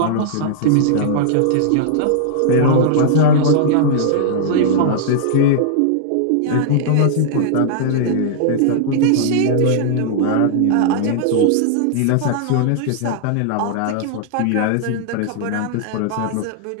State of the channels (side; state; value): both; different; correlation -0.01